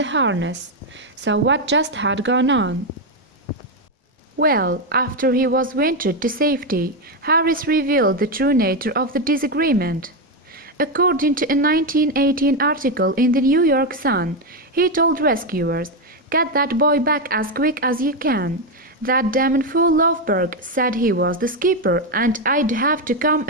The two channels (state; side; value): normal; both; correlation 0.07